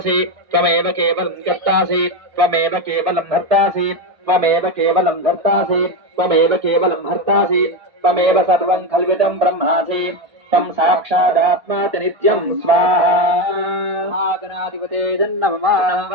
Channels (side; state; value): left; late; 1.6 ms